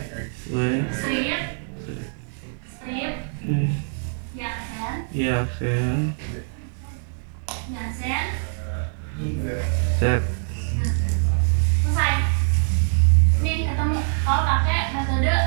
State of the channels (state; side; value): silent; left; digital silence